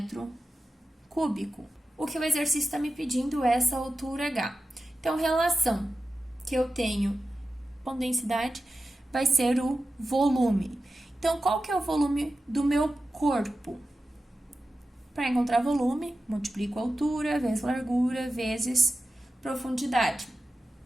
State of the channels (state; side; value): normal; both; correlation 0.93